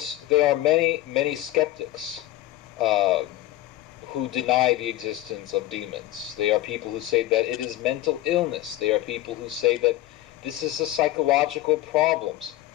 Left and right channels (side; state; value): right; quieter; 15.1 dB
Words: there are many skeptics who deny the existence of demons. They are people who say that it is mental illness. They are people who say that this is a psychological problems.